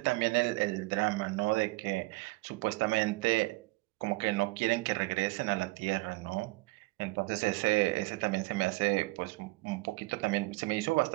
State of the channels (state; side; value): quieter; left; 22.7 dB